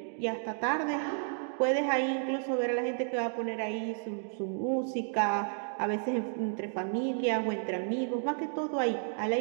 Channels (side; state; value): left; silent; 56 dB below the other